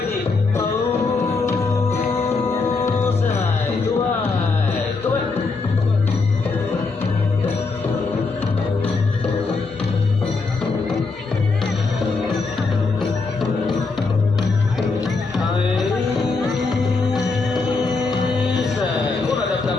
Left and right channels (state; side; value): quieter; right; 4.0 dB